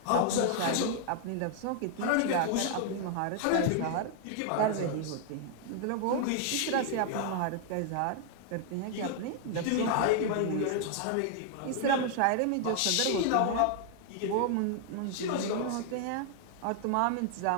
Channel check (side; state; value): both; different; correlation 0.00